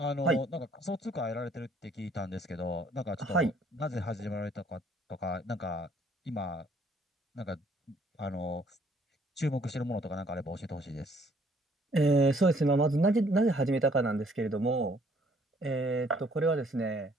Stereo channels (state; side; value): normal; both; correlation 0.62